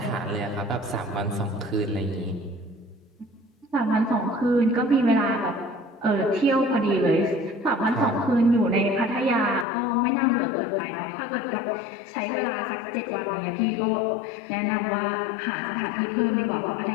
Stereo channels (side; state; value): right; drops out; at 9.7 s